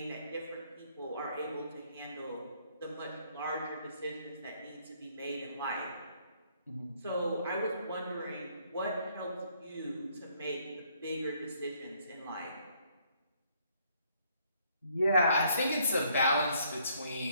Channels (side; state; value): both; inverted; correlation -0.67